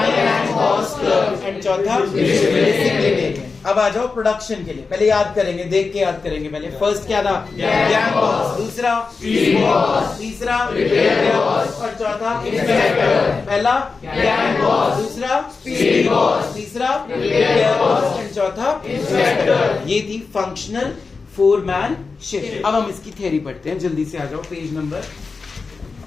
and cost clerk and चौथा डिसिप्लिनेरियन। अब आ जाओ प्रोडक्शन के लिए, पहले याद करेंगे, देख के याद करेंगे। पहले फर्स्ट क्या था? गैंग बॉस, दूसरा बॉस, तीसरा बॉस और चौथा इंस्पेक्टर। पहला गैंग बॉस, दूसरा बॉस, तीसरा बॉस एंड चौथा इंस्पेक्टर। ये थी फंक्शनल 4-man शिफ्ट। अब हम इसकी थ्योरी पढ़ते हैं, जल्दी से आ जाओ पेज नंबर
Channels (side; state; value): right; quieter; 4.5 dB